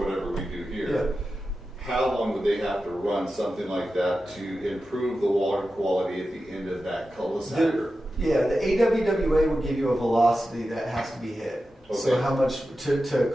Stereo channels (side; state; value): both; normal; correlation 0.92